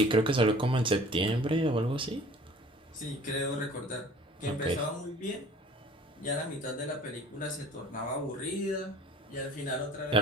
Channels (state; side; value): normal; both; correlation 0.48